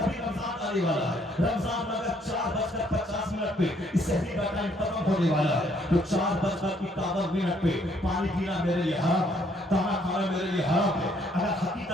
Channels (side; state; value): both; normal; correlation 0.67